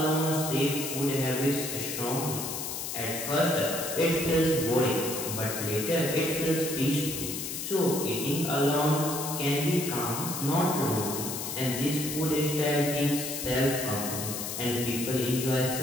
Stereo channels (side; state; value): left; noise; hiss, 5 dB below the sound